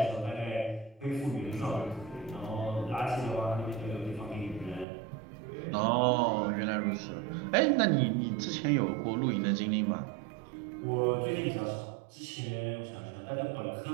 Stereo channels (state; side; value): drops out; left; at 4.9 s